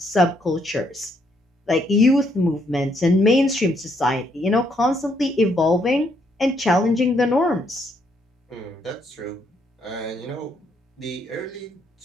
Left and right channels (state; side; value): normal; both; correlation 0.72